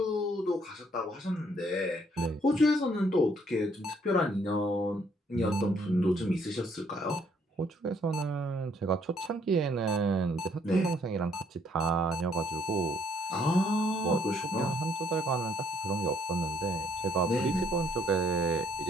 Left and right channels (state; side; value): normal; both; correlation 0.66